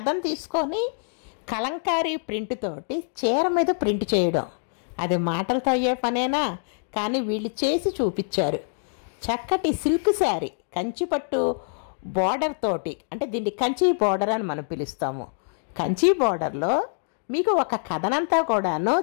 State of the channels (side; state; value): right; silent; digital silence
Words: తీసుకొని కలంకారీ ప్రింట్ తోటి చీర మీద ప్రింట్ చేయడం, అది మాటలతో అయ్యే పనేనా? కానీ వీళ్ళు చేసి చూపించారు. చక్కటి సిల్క్ శారీ, కంచిపట్టు బార్డర్ తోటి, అంటే దీన్ని కంచి బార్డర్ అని మనం పిలుస్తాము. కంచి బార్డర్లో మీకు ఒక కథనంతా కూడాను